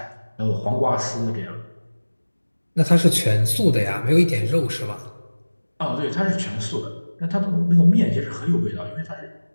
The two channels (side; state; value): both; inverted; correlation -1.00